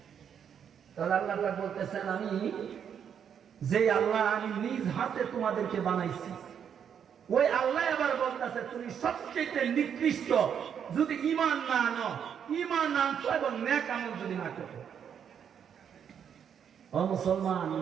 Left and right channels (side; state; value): left; quieter; 8.1 dB